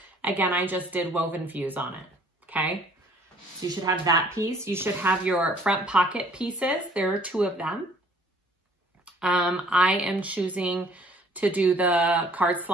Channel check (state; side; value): normal; both; correlation 0.57